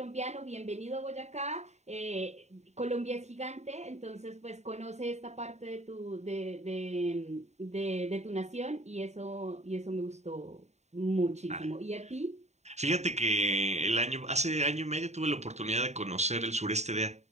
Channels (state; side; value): late; left; 0.32 ms